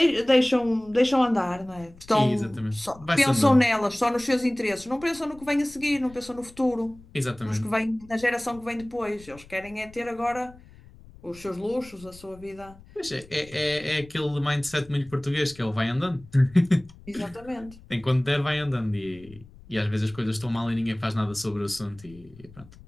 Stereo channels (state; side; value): noise; left; rumble, 22 dB below the sound